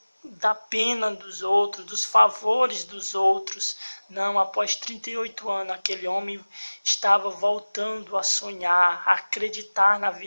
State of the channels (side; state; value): both; inverted; correlation -1.00